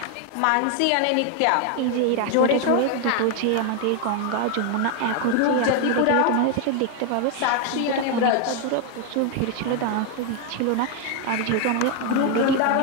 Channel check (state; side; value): different; both; correlation 0.01